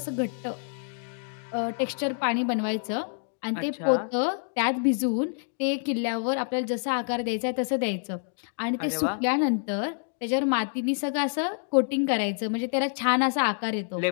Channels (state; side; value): silent; right; digital silence